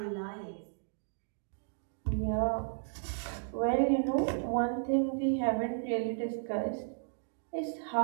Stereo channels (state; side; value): silent; left; digital silence